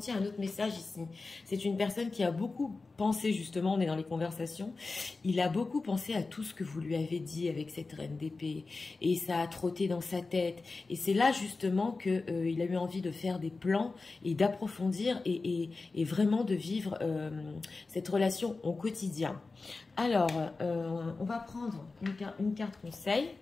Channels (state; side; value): quieter; right; 3.8 dB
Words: un autre message ici. C'est une personne qui a beaucoup pensé, justement, on est dans les conversations, il a beaucoup pensé à tout ce que vous lui avez dit avec cette reine d'épée. Et ça a trotté dans sa tête. Et c'est là, justement, qu'il a eu envie de faire des plans et d'approfondir et vraiment de vivre cette relation au quotidien. Alors, on va prendre une carte conseil.